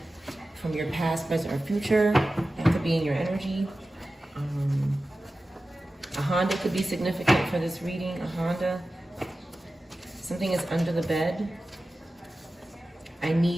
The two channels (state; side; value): normal; both; correlation 0.95